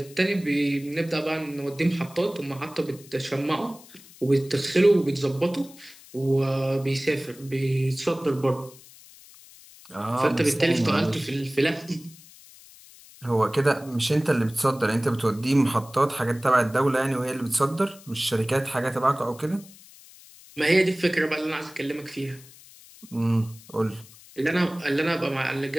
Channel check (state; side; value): noise; left; hiss, 22 dB below the sound